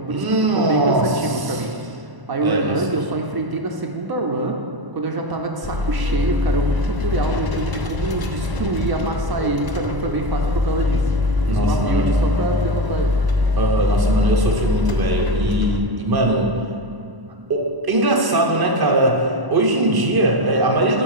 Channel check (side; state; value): left; late; 1.0 ms